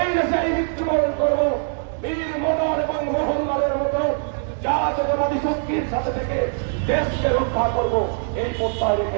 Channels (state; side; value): silent; left; digital silence